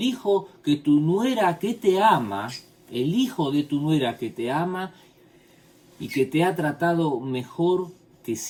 hijo que tu nuera que te ama, el hijo de tu nuera que te ama y que te ha tratado mejor que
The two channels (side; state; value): both; identical; correlation 1.00